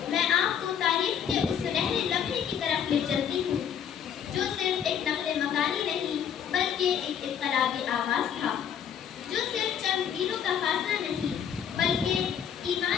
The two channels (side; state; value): right; quieter; 8.5 dB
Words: میں آپ کو تاریخ کے اس سنہرے لمحے کی طرف لے چلتی ہوں جو صرف ایک نقل مکانی نہیں بلکہ ایک انقلابی آغاز تھا، جو صرف چند میلوں کا فاصلہ نہیں بلکہ